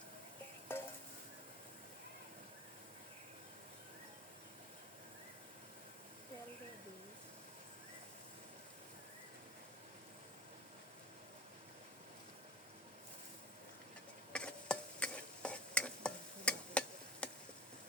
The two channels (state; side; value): normal; both; correlation 0.35